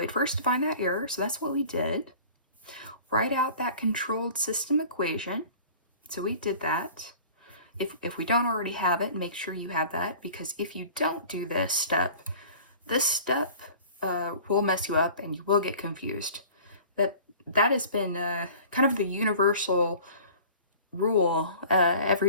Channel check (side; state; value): both; inverted; correlation -0.45